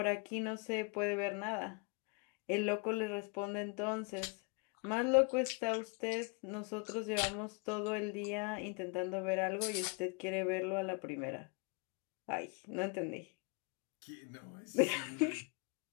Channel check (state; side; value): quieter; right; 31.8 dB